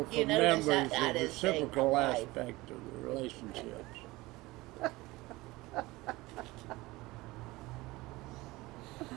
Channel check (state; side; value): quieter; left; 20.6 dB